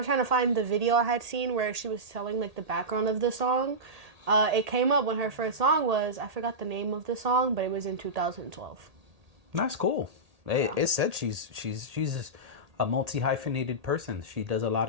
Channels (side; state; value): left; late; 1.8 ms